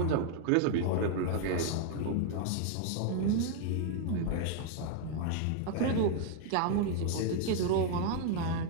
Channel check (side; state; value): both; different; correlation 0.00